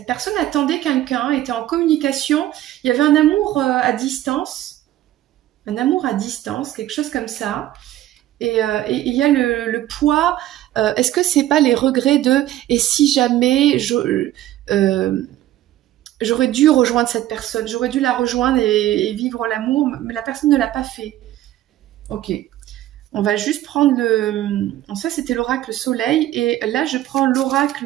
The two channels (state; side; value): quieter; left; 13.8 dB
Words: personne attendait quelqu'un, était en communication. Il y avait un amour à distance. Un amour à distance, quelque chose comme ça. Et il y a le poids. Est-ce que c'est pas les regrets de et si jamais j'aurais dû rejoindre cette personne, j'aurais dû la rejoindre et vivre l'amour, mais la personne ne l'a pas fait. Ok. On va juste prendre le... Ça, c'était l'oracle soleil. Et là, je prends l'oracle